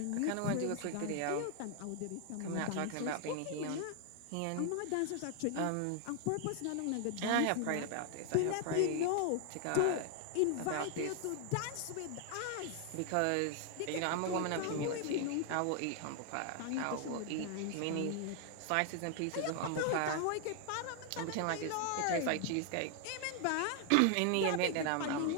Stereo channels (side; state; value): both; different; correlation 0.00